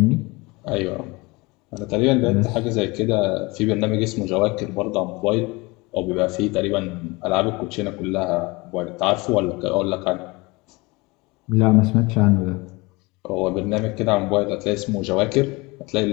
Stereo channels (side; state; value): right; quieter; 24.6 dB